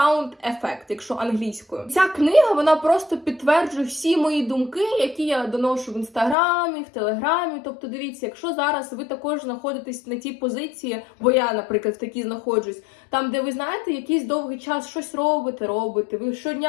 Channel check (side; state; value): right; drops out; at 6.4 s